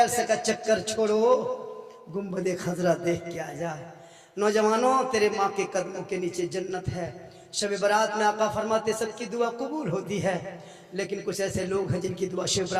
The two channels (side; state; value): both; identical; correlation 1.00